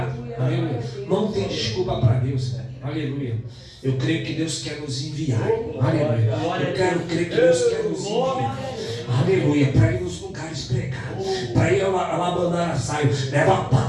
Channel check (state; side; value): identical; both; correlation 1.00